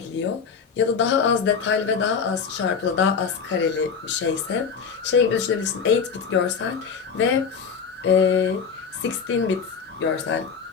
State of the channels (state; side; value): quieter; right; 6.1 dB